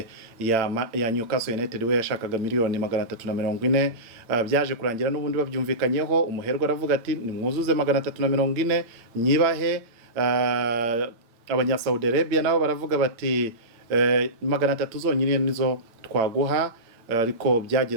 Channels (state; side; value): late; left; 8.9 ms